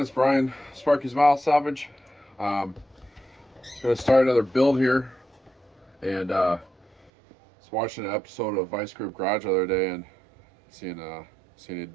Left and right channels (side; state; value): left; drops out; at 7.1 s